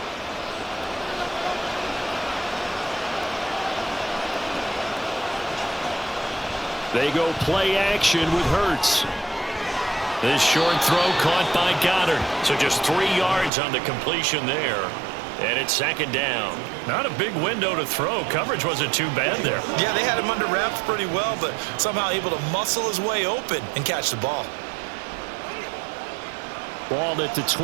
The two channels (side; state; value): left; drops out; at 13.5 s